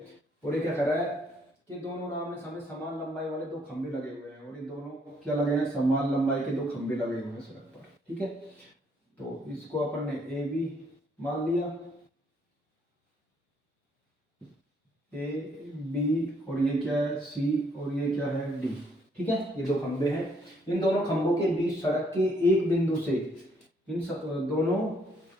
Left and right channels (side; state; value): both; normal; correlation 0.68